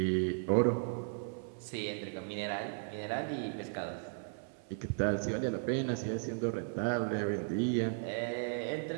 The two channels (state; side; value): silent; left; 54 dB below the other